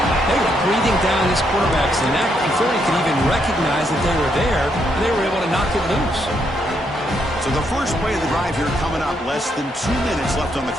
They were breathing down this quarterback's neck before he could even recognize that they were there, and they were able to knock it loose. So the first play of the drive here coming up. Less than 2 minutes left on the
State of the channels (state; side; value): normal; both; correlation 0.76